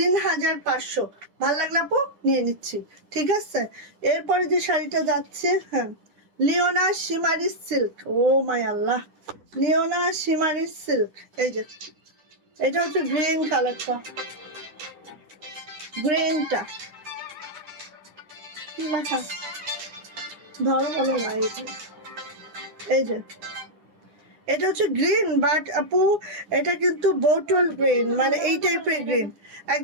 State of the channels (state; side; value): late; left; 9.9 ms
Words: ভালো লাগলো আপু, নিয়ে নিচ্ছি, ঠিক আছে। এরপরে যে শাড়িটা যাচ্ছে, হ্যাঁ লিওনা শিমারি সিল্ক, ও মাই আল্লাহ, লিওনা শিমারি সিল্ক। এই যে এটা হচ্ছে গ্রিন কালারটা, গ্রিনটা কি লেখা ধরো বলো না, এই যে এটা হচ্ছে গ্রিন, বাট আপু এটা কিন্তু বোটল গ্রিন, মানে এই টাইপের গ্রিন,